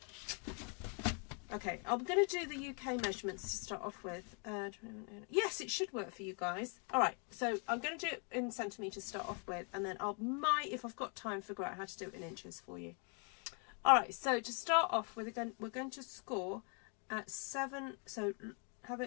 Okay, I'm going to do the UK measurements to start off with. Yes, it should work for you guys. All right, so I'm going to do it in centimetres to start off with, and then I might, if I've got time, figure out how to do it in inches for you. All right, so to start off with, we're going to score at 7. So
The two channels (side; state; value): right; quieter; 38.1 dB